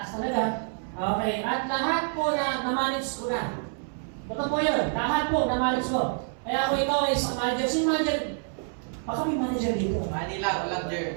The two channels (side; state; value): left; silent; 60 dB below the other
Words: talaga. Okay, at lahat po na na-manage ko na. Totoo po yun. Lahat po na-manage ko. Kaya kung ikaw ay isang manager, sino manager? Baka may manager dito. Manila, walang